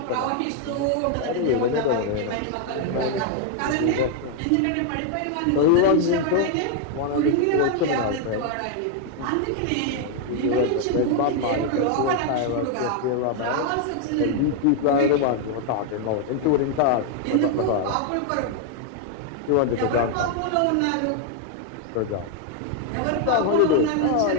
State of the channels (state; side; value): different; both; correlation 0.00